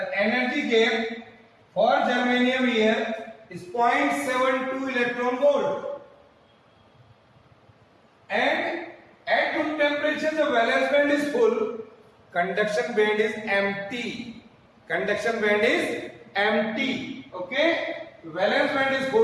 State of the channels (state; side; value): identical; both; correlation 1.00